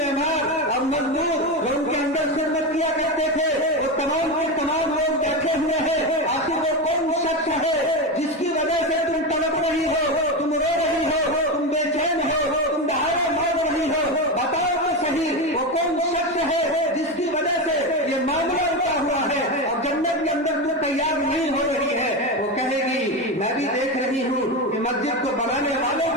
और मजदूर जो उनके अंदर खिदमत किया करते थे, वो तमाम के तमाम लोग बैठे हुए हैं। आखिर वो कौन शख्स है जिसकी वजह से तुम तड़प रही हो, तुम रो रही हो, तुम बेचैन हो, तुम दहाड़े मार रही हो, बताओ तो सही वो कौन शख्स है जिसकी वजह से ये मामला उठा हुआ है और जन्नत के अंदर तू तैयार नहीं हो रही है। वो कहेगी मैं भी देख रही हूँ कि मस्जिद को बनाने वाले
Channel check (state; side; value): normal; both; correlation 0.16